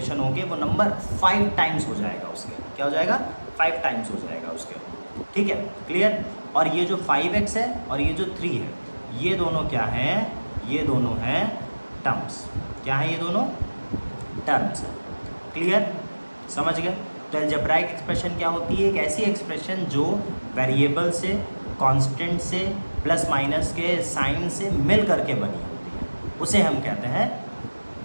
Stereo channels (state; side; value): inverted; both; correlation -1.00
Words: होके वो नंबर 5 टाइम्स हो जाएगा उसके। क्या हो जाएगा? 5 टाइम्स हो जाएगा उसके। ठीक है, क्लियर। और ये जो 5x है और ये जो 3 है, ये दोनों क्या हैं? ये दोनों हैं टर्म्स। क्या है? ये दोनों टर्म्स है। क्लियर, समझ गए। तो अलजेब्राइक एक्सप्रेशन क्या होती है? एक ऐसी एक्सप्रेशन जो वेरिएबल से, कांस्टेंट से, प्लस माइनस के साइन से मिल करके बनी होती है, उसे हम कहते हैं